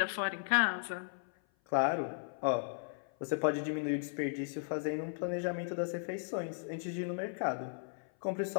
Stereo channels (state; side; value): silent; right; 54 dB below the other